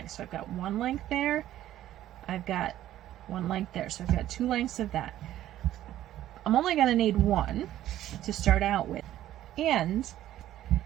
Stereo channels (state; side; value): quieter; left; 13.1 dB